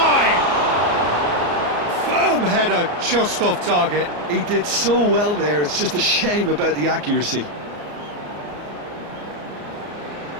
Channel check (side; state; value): left; late; 34 ms